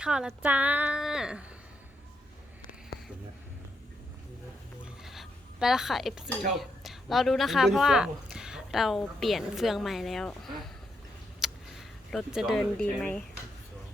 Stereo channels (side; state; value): both; normal; correlation 0.80